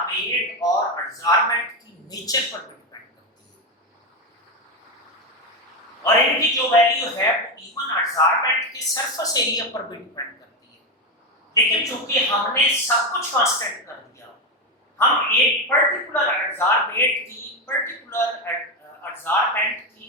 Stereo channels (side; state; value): both; normal; correlation 0.12